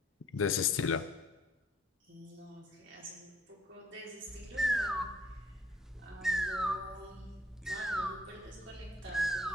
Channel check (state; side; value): normal; both; correlation 0.61